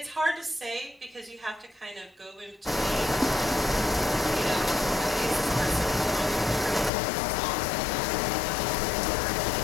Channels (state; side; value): drops out; right; at 6.9 s